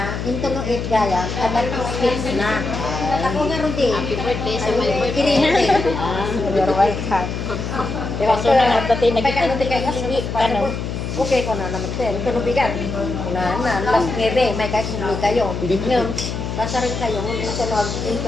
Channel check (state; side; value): noise; left; hum, 4 dB below the sound